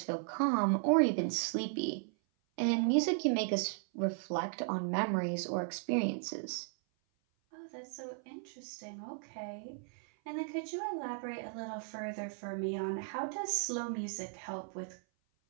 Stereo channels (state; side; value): silent; left; 54 dB below the other